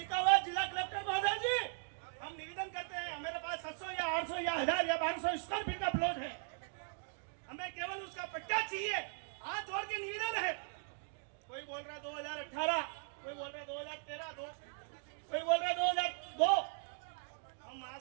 हुआ है जिला कलेक्टर महोदय जी, हम निवेदन करते हैं हमारे पास 700 या 800 या 1000 या 1200 स्क्वायर फीट का प्लॉट है, हमें केवल उसका पट्टा चाहिए। हाथ जोड़ के निवेदन है। कोई बोल रहा है 2018, कोई बोल रहा है 2013, कोई बोल रहा है 2002। हम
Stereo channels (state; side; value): silent; left; digital silence